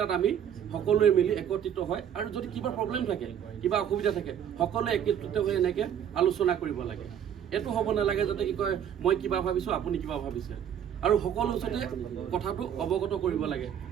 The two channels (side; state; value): left; quieter; 9.1 dB